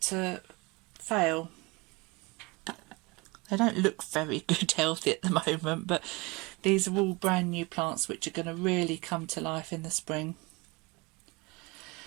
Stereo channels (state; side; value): quieter; left; 25.5 dB